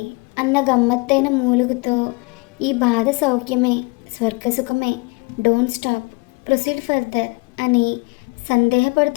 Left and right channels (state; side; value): quieter; right; 28.6 dB